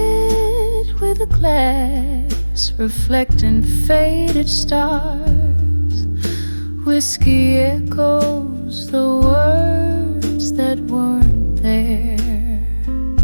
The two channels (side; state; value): both; inverted; correlation -1.00